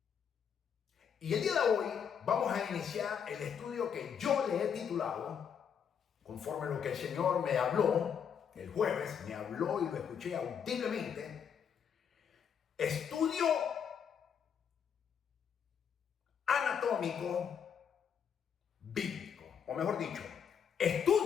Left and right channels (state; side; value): quieter; right; 7.6 dB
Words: Y el día de hoy vamos a iniciar el estudio que yo le he titulado, conforme a lo que el Señor me habló el jueves, me habló y lo escuché audiblemente, estudio anatómico bíblico, o mejor dicho,